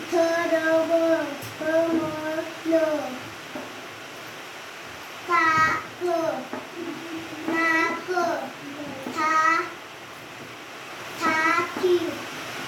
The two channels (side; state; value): both; identical; correlation 1.00